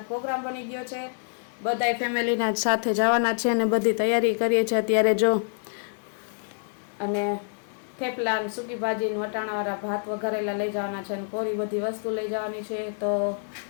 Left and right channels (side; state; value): right; silent; digital silence